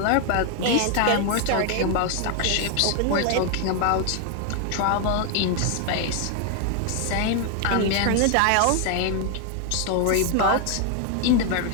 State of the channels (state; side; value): different; both; correlation 0.00